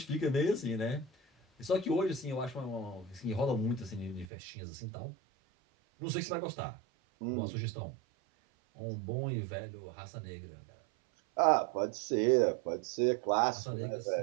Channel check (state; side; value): drops out; left; at 4.2 s